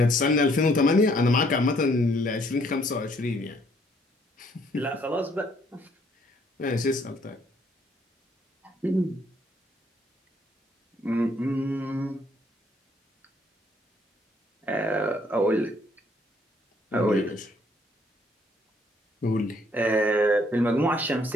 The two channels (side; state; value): both; normal; correlation 0.65